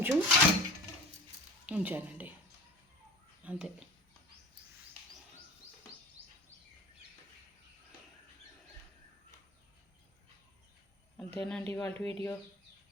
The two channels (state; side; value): normal; both; correlation 0.39